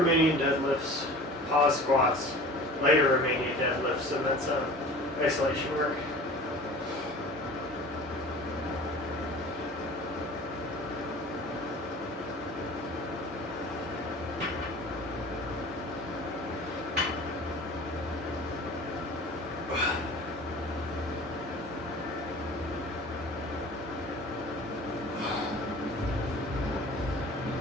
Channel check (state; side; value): normal; both; correlation 0.42